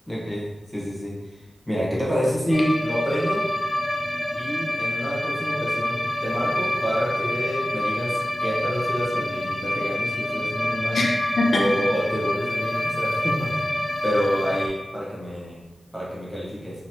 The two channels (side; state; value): both; normal; correlation 0.95